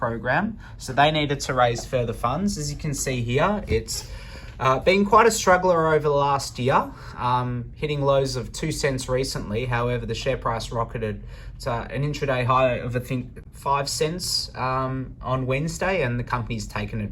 So they needed to raise further funds. As you can see here, it's been quite a struggler over the last year, hitting lows of 2 cents recently. However, the share price rocketed to an intraday high of, I think, 5 cents on Wednesday, and the company's taken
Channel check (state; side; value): identical; both; correlation 1.00